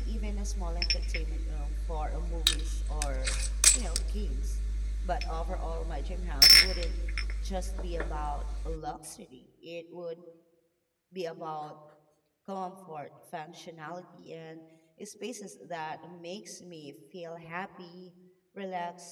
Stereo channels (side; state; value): both; identical; correlation 1.00